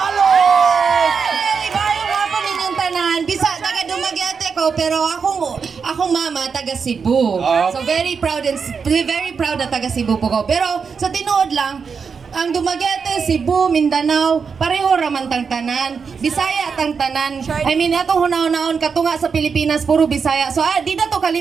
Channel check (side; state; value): left; quieter; 5.8 dB